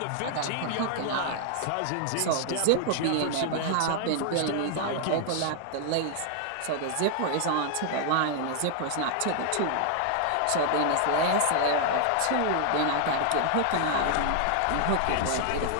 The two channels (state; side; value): different; both; correlation 0.00